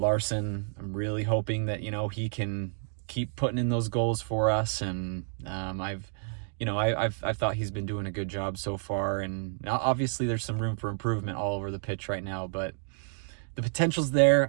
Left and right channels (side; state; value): left; silent; 58 dB below the other